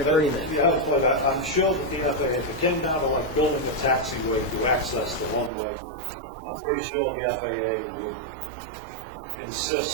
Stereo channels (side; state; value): left; drops out; at 5.5 s